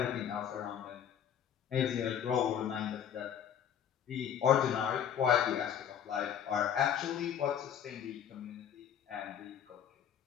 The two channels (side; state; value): right; quieter; 8.9 dB